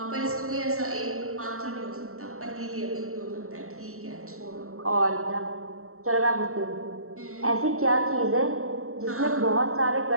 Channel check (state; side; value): late; left; 0.63 ms